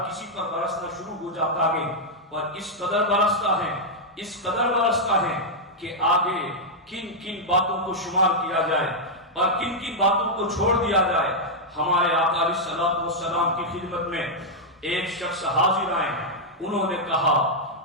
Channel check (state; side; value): normal; both; correlation -0.04